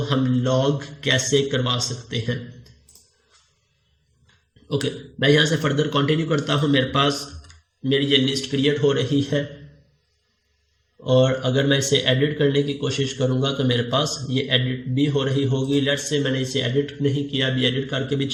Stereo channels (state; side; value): identical; both; correlation 1.00